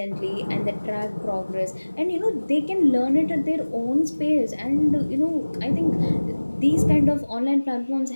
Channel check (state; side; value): inverted; both; correlation -1.00